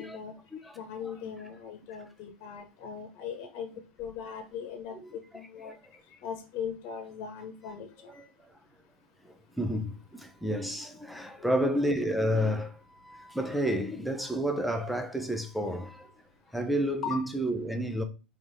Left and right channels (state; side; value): normal; both; correlation 0.68